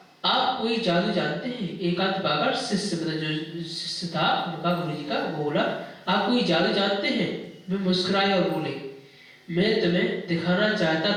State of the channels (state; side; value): identical; both; correlation 1.00